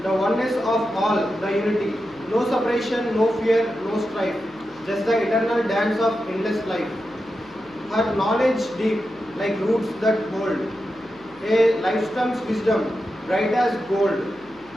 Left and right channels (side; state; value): left; noise; hum, 29 dB below the sound